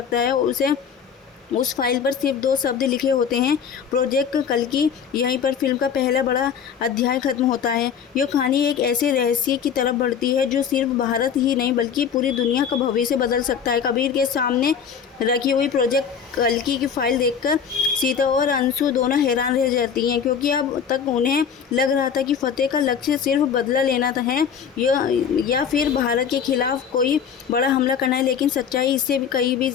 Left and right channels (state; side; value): quieter; right; 7.4 dB